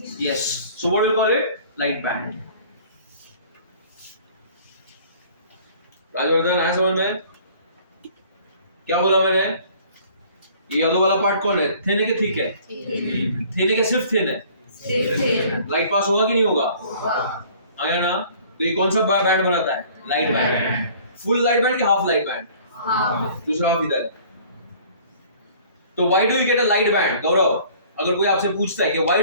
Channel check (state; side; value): inverted; both; correlation -0.52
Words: Yes. So what will we call it? Light band. Rajvardhan आया समझ में? क्या बोला मैंने? ये yellow वाला part कौन है? थिन है कि थिक है? थिन है कि सिर्फ थिन है? लाइट पास होगा कि नहीं होगा? आया ना? तो ये कौन सा बैंड बनाता है? Light band. Full light band कि हाफ लाइट बैंड? दूसरा हाफ इधर। तो why do you get a light band? Gaurav, अगर कोई आपसे पूछता है कि why